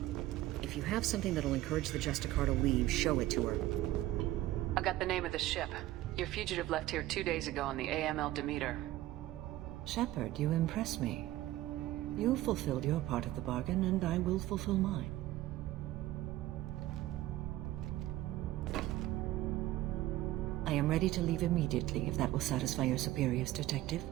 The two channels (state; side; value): quieter; left; 15.7 dB